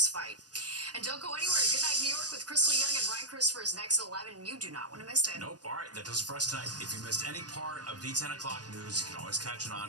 fight. And don't go anywhere. Good Night New York with Crystal Young and Ryan Christopher is next at 11, and you do not want to miss it. Nope. All right, that does it for us tonight. If you missed any part of the 10 o'clock news, you can always catch an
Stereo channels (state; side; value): late; left; 0.69 ms